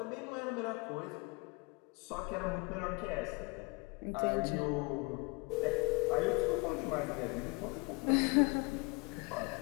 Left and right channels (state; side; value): quieter; right; 28.4 dB